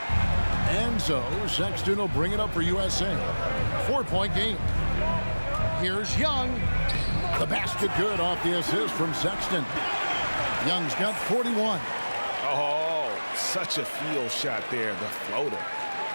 And so Sexton will bring it up for USA. 4-point game. Here's Young. The basket good off the assist from Sexton. Young's got 41. Oh, such a field shot there, the floater.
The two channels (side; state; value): both; inverted; correlation -1.00